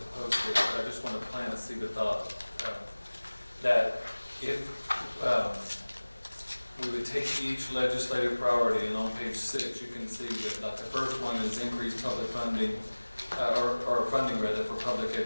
post it, but I just want to plant a seed of thought that if we would take each legislative priority, and on page 6 you can see that like the first one is increased public funding, or funding rather, for public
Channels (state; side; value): inverted; both; correlation -1.00